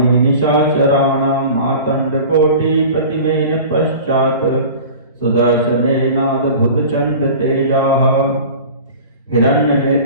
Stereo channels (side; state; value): both; inverted; correlation -0.39